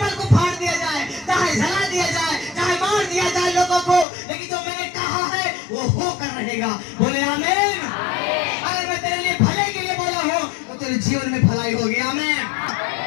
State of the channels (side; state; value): right; drops out; at 4.0 s